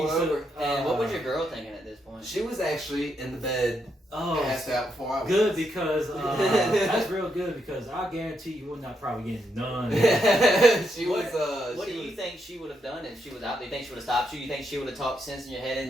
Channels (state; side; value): normal; both; correlation 0.80